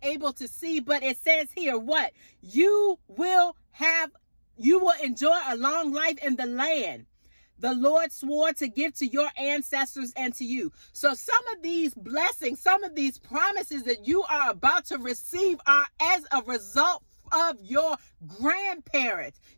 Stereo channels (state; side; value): inverted; both; correlation -1.00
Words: able to see. But it says here, what? You will enjoy a long life in the land the Lord swore to give to your ancestors and to you. So some of these blessings, some of these promises that you are about to receive are as a result of your grandparents,